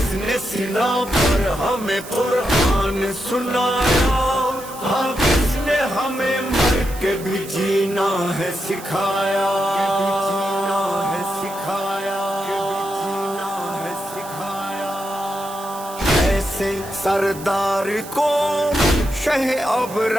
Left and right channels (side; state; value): right; noise; hiss, 15 dB below the sound